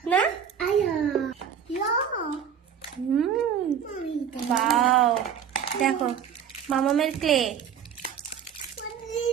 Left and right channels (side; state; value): left; quieter; 8.1 dB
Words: না? বাও, দেখো মামামের ক্লে।